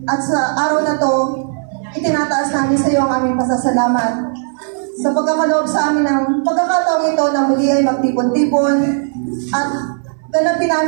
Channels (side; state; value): left; silent; 63 dB below the other